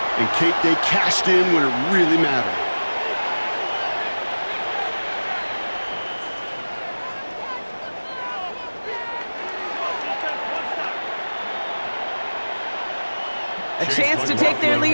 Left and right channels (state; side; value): inverted; both; correlation -1.00